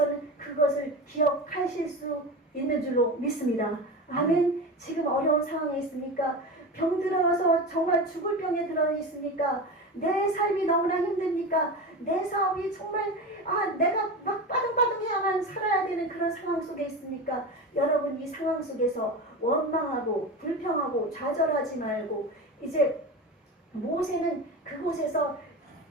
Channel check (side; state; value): both; normal; correlation 0.25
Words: 그것을 기억하실 수 있는 줄로 믿습니다. 아멘. 지금 어려운 상황에 있습니까? 병들어서 정말 죽을 병에 들어 있습니까? 내 삶이 너무나 힘듭니까? 내 사업이 정말 내가 막 빠둥빠둥해야만 살아야 되는 그런 상황 속에 있습니까? 여러분 이 상황 속에서 원망하고 불평하고 좌절하지 말고 이제 모세는 그곳에서